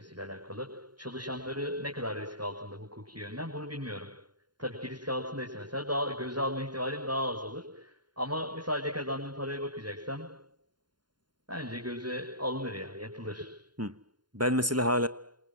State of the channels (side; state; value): left; late; 0.71 ms